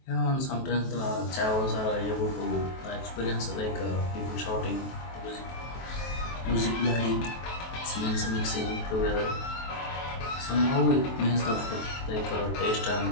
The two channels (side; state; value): right; late; 23 ms